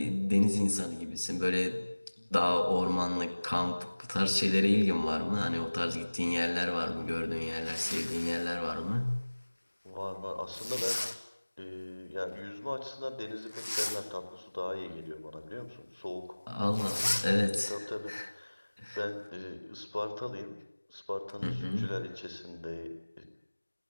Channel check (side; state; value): both; inverted; correlation -1.00